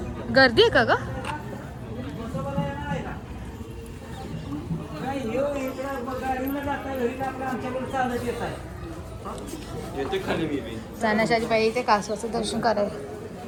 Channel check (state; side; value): identical; both; correlation 1.00